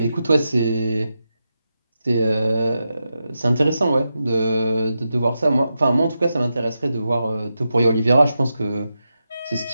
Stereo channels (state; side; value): inverted; both; correlation -0.88